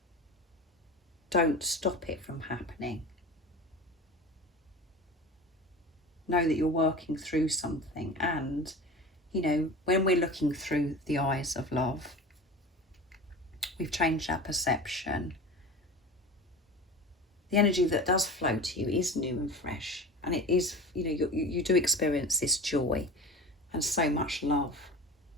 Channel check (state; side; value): normal; both; correlation 0.34